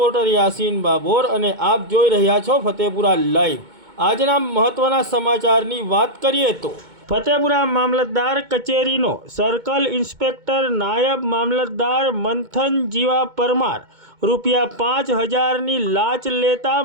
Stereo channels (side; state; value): left; late; 2.2 ms